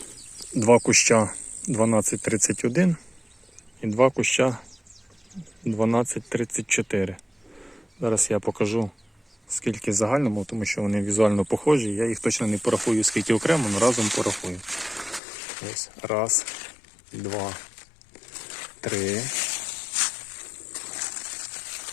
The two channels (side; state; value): right; drops out; at 15.2 s